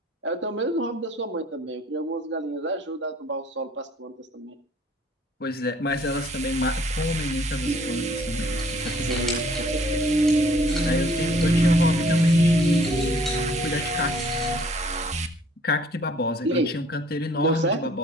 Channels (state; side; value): normal; both; correlation 0.58